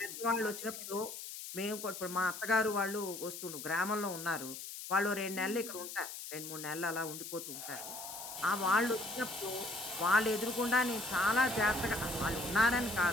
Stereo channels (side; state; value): left; noise; hiss, 9 dB below the sound